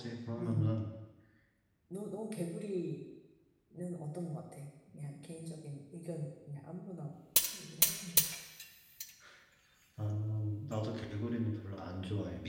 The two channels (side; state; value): both; identical; correlation 1.00